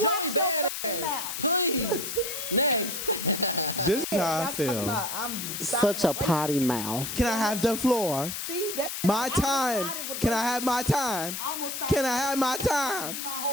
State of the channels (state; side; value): noise; left; hiss, 5 dB below the sound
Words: watch your fucking mouth. Please. Next. This is how I feel. I'm such a potty mouth. Can I have the floor? See, that's my time. Can I have my time? Can I have my time? My